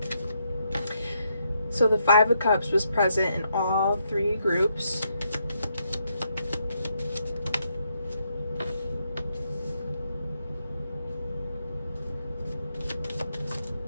So the 5 of Cups was present in all 3 groups.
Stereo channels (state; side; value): inverted; both; correlation -0.78